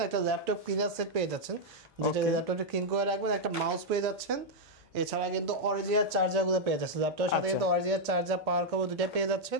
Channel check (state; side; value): normal; both; correlation -0.03